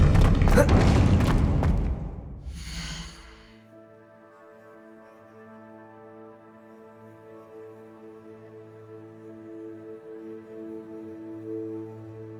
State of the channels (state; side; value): identical; both; correlation 1.00